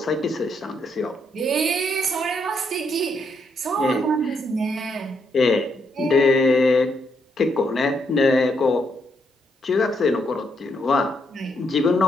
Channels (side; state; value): both; normal; correlation 0.77